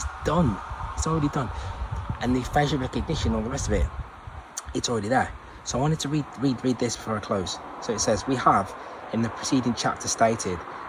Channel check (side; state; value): both; identical; correlation 1.00